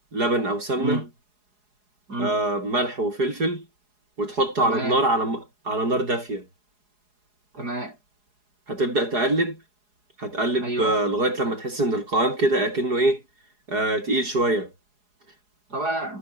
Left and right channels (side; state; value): left; late; 4.8 ms